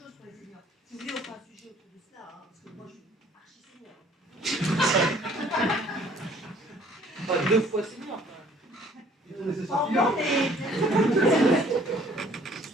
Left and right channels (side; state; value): both; normal; correlation 0.57